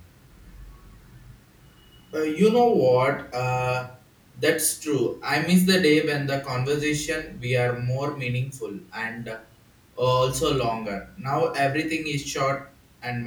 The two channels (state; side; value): identical; both; correlation 1.00